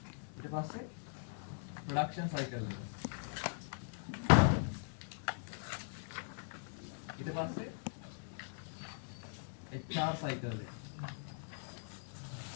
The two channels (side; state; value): right; silent; digital silence